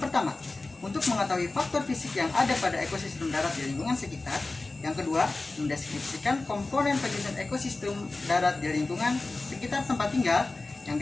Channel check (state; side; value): quieter; right; 3.3 dB